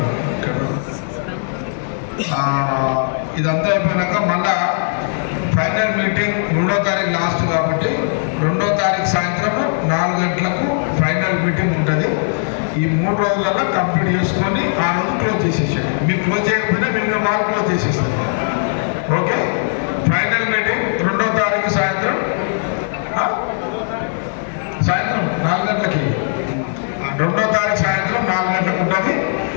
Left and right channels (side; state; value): right; silent; 67 dB below the other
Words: ఇక్కడ. ఇదంతా అయిపోయినాక మళ్ళా ఫైనల్ మీటింగ్ 2వ తారీఖు లాస్ట్ కాబట్టి 2వ తారీఖు సాయంత్రం 4 గంటలకు ఫైనల్ మీటింగ్ ఉంటుంది. ఈ 3 రోజులలో కంప్లీట్ చేసుకొని ఆ రోజు క్లోజ్ చేసేసాడు. మీరు క్లోజ్ చేయకపోయినా మీరు వాళ్ళు క్లోజ్ చేసేస్తారు. ఓకే. ఫైనల్ మీటింగ్ 2వ తారీఖు సాయంత్రం 4 గంటలకి. 2వ తారీఖు సాయంత్రం 4 గంటలకు ఉంటుంది.